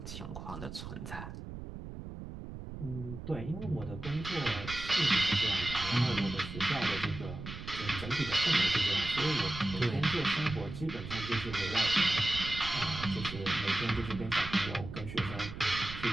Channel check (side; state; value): right; noise; rumble, 10 dB below the sound